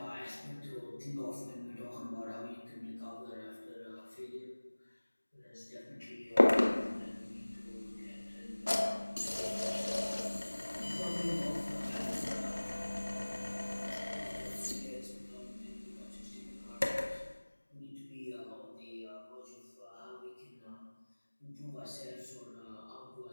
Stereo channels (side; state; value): both; inverted; correlation -1.00